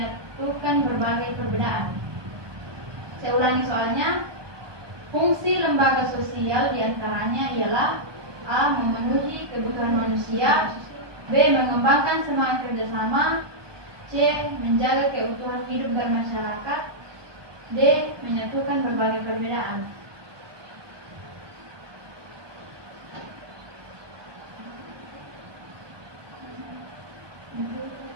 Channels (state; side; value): late; left; 1.2 ms